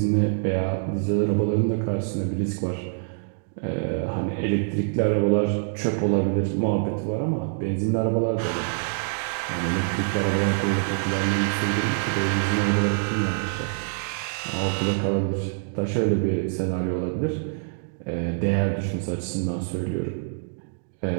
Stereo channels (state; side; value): silent; left; digital silence